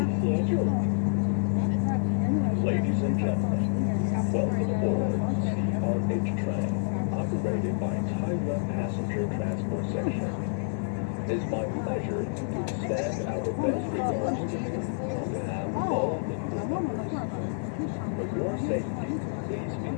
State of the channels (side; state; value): right; silent; digital silence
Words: 协助。Ladies and gentlemen, welcome aboard CRH train operated by Taiwan Passenger Transport Section. It is my pleasure to extend our best regards to you on behalf of all the crew members. For your safety, please be